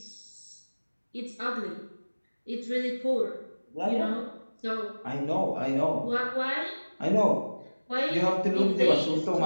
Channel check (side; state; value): both; inverted; correlation -1.00